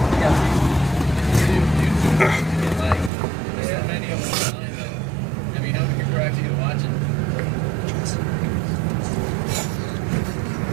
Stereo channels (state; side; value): drops out; left; at 3.1 s